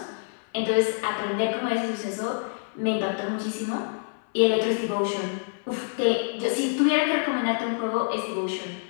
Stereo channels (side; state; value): right; silent; 60 dB below the other